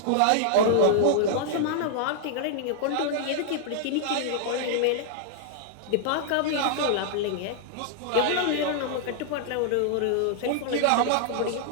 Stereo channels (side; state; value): both; different; correlation -0.01